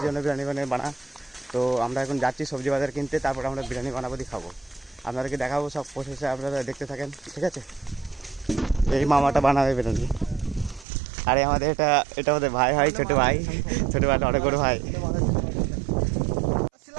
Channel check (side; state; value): left; drops out; at 10.9 s